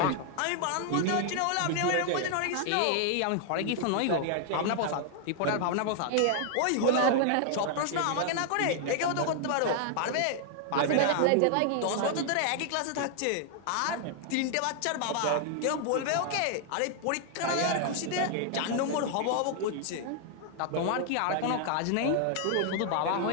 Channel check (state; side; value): different; both; correlation 0.00